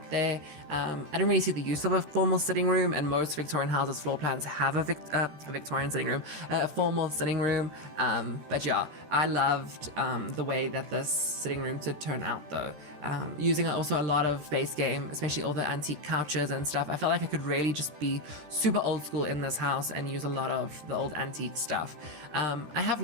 there. I don't really see the use of a formal sitting room, and most Victorian houses floor plans have a Victorian sitting room, a formal sitting room. But yeah, I loved the way that this sitting room did turn out though. Using also a lot of base game, especially all the antique couches and stuff. I felt like I could really just be super old school in this house and use a lot of the old antique stuff. I have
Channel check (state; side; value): late; left; 13 ms